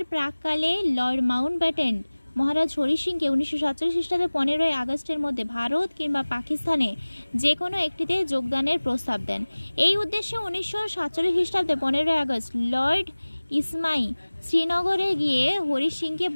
প্রাককালে লর্ড মাউন্টব্যাটেন মহারাজ হরি সিংকে 1947 খ্রিস্টাব্দে 15ই আগস্টের মধ্যে ভারত কিংবা পাকিস্তানে যে কোনো একটিতে যোগদানের প্রস্তাব দেন। এই উদ্দেশ্যে 1947 খ্রিস্টাব্দে 15ই আগস্ট লর্ড ইসমাই শ্রীনগরে গিয়ে হরি সিংকে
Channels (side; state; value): both; inverted; correlation -1.00